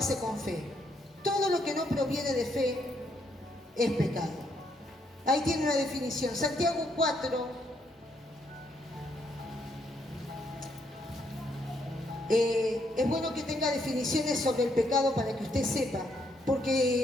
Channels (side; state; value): both; normal; correlation 0.74